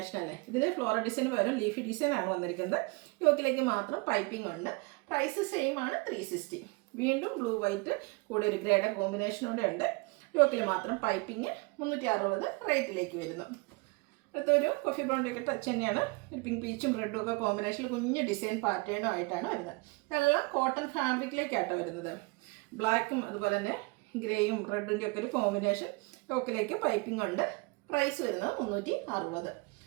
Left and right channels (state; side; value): quieter; left; 27.7 dB